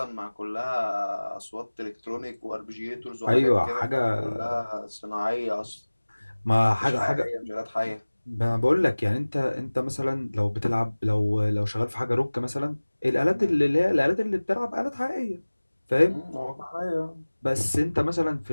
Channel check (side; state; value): both; inverted; correlation -1.00